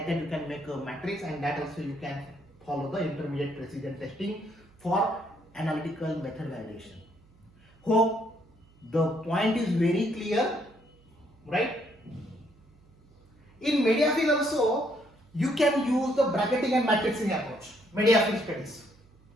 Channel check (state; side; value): noise; right; hum, 29 dB below the sound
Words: that you can make a matrix, and that also you can follow the intermediate precision testing for analytical method validation. Hope the point is very clear, right? In Mediafield also you can use the bracketing and matrixing approach. Mediafield studies.